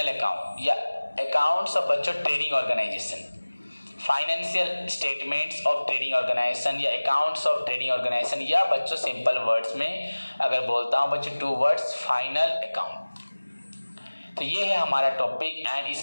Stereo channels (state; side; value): inverted; both; correlation -1.00